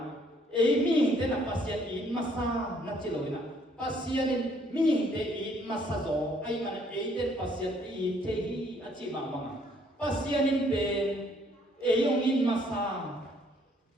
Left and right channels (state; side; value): normal; both; correlation 0.65